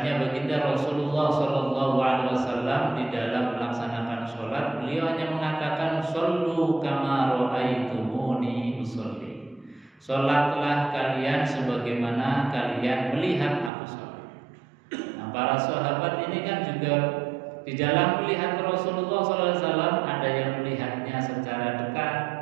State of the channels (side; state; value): left; drops out; at 13.7 s